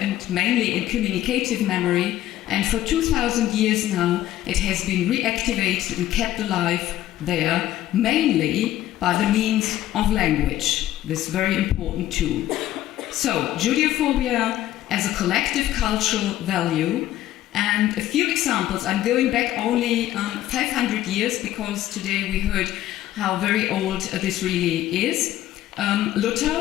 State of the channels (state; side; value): quieter; right; 13.6 dB